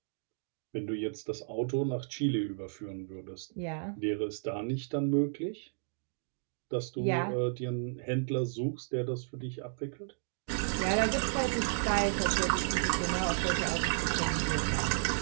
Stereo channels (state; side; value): silent; left; digital silence